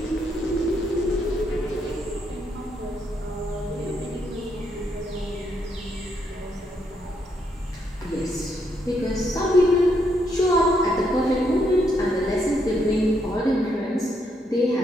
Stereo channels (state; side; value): normal; both; correlation 0.76